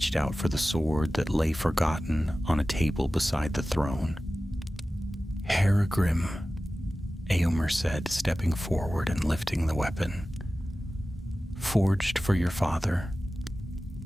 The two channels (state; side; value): normal; both; correlation 0.96